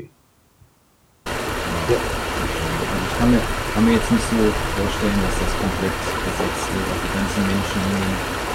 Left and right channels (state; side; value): identical; both; correlation 1.00